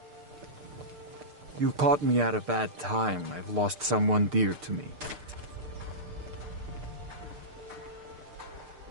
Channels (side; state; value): left; late; 6.7 ms